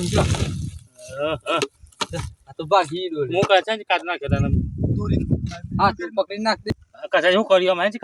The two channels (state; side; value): identical; both; correlation 1.00